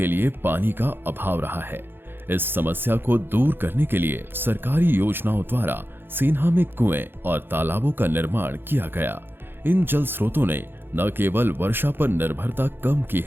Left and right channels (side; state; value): left; late; 0.10 ms